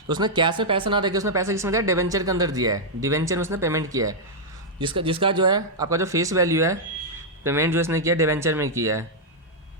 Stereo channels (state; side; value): normal; both; correlation -0.05